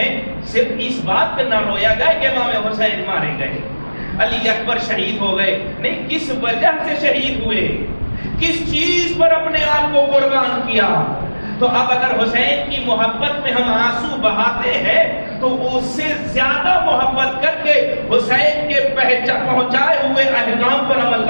صرف اس بات پہ نہ رویا جائے کہ امام حسین مارے گئے، علی اکبر شہید ہو گئے، نہیں، کس وجہ سے شہید ہوئے، کس چیز پر اپنے آپ کو قربان کیا۔ تو اب اگر حسین کی محبت میں ہم آنسو بہاتے ہیں تو اس سے زیادہ محبت کر کے حسین کے پہنچائے ہوئے احکام پر عمل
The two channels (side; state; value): both; inverted; correlation -1.00